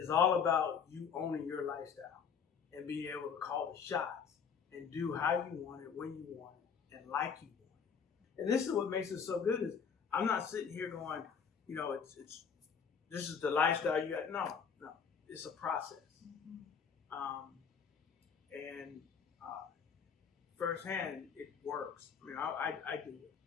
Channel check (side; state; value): right; quieter; 6.7 dB